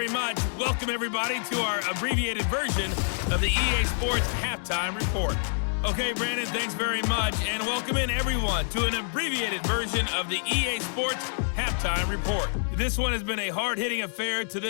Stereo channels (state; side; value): silent; right; digital silence